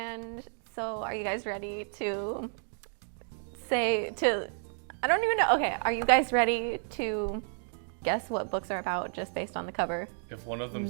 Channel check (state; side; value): silent; left; 57 dB below the other